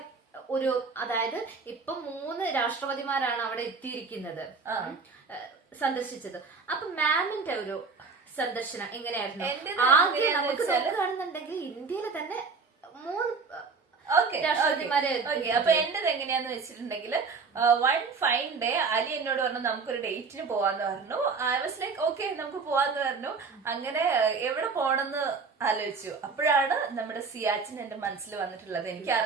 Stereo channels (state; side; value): quieter; left; 4.7 dB